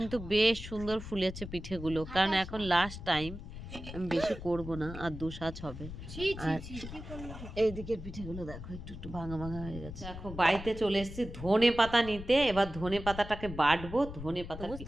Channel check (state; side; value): noise; left; rumble, 11 dB below the sound